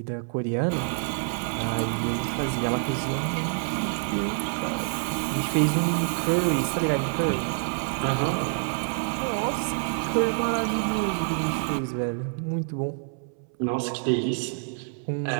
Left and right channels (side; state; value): left; silent; 60 dB below the other